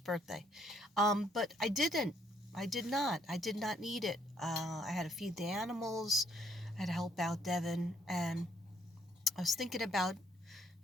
But I didn't. I did not. I did not need it. I had to feed the animals. I had to help out Devin, and I was thinking about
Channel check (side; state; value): both; normal; correlation 0.68